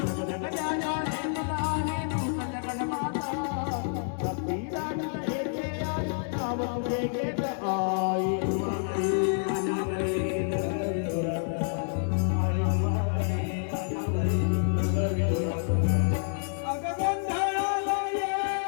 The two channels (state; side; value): silent; right; digital silence